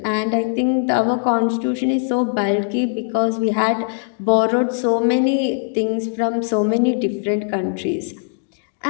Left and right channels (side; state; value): right; silent; digital silence